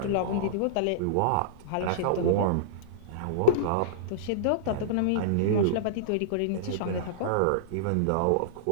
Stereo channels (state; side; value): different; both; correlation -0.02